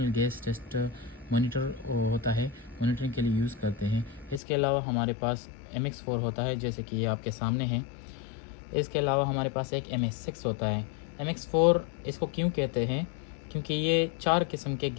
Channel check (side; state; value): right; drops out; at 4.4 s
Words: गैस टेस्ट मोनीटर होता है, मोनीटरिंग के लिए यूज़ करते हैं। इसके अलावा हमारे पास MX4 होता है जैसे कि ये आपके सामने है। इसके अलावा हमारे पास एक MS6 होता है। MX4 इसको क्यों कहते हैं? क्योंकि ये 4 किस्म के